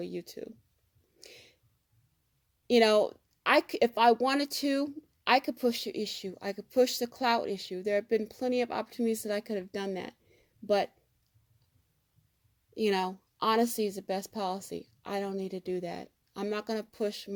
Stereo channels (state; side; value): identical; both; correlation 1.00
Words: YouTube. You know, if I wanted to, I could push the issue. I could push the clout issue. There have been plenty of opportunities that I could have done that. But, you know, honesty is the best policy. I don't need to do that. I'm not going to push